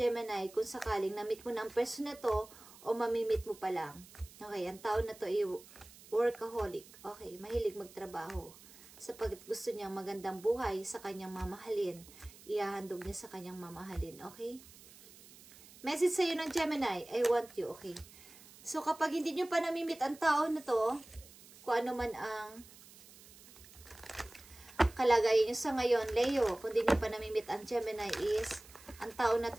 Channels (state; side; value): noise; right; hiss, 21 dB below the sound